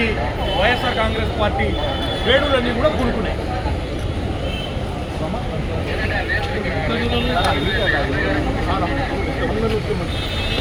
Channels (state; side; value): identical; both; correlation 1.00